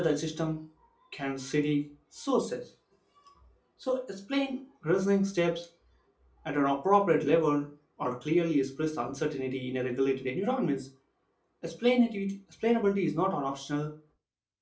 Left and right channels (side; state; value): both; identical; correlation 1.00